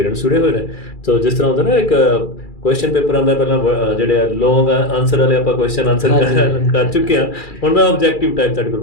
ਜੁੜੇ ਹੋਏ ਨੇ। ਸੋ ਜਿਸ ਤਰ੍ਹਾਂ ਹੁੰਦਾ ਨਾ ਇੱਕ ਕੁਐਸਚਨ ਪੇਪਰ ਆਉਂਦਾ, ਪਹਿਲਾਂ ਜਿਹੜੇ ਲੌਂਗ ਆਨਸਰ ਵਾਲੇ ਆਪਾਂ ਕੁਐਸਚਨ ਆਨਸਰ ਕਰ ਚੁੱਕੇ ਹਾਂ। ਹੁਣ ਮੈਂ ਆਬਜੈਕਟਿਵ ਟਾਈਪ ਤੁਹਾਡੇ ਕੋਲ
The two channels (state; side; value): late; right; 2.3 ms